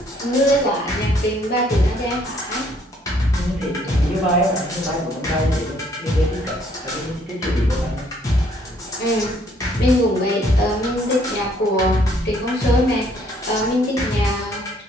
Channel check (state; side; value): normal; both; correlation 0.65